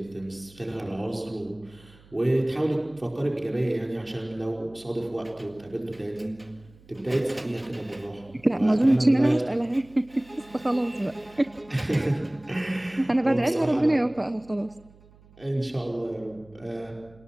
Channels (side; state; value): right; noise; hum, 26 dB below the sound